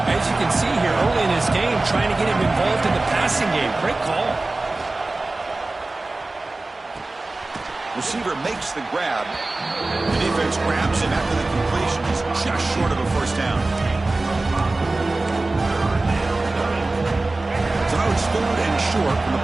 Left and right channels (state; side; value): quieter; left; 3.1 dB